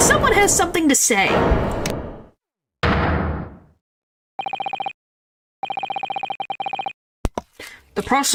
Someone has something to say. The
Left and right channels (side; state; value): both; identical; correlation 1.00